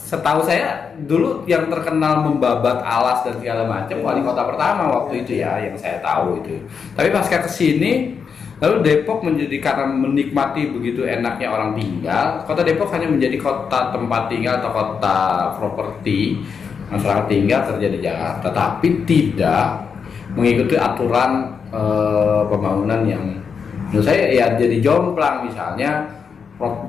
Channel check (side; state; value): right; quieter; 6.2 dB